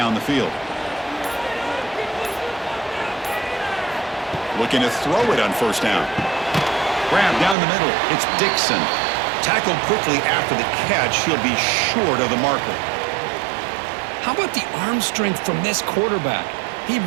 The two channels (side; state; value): left; drops out; at 7.6 s